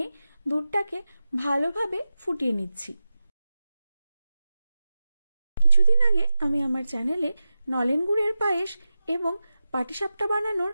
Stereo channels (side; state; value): both; inverted; correlation -0.94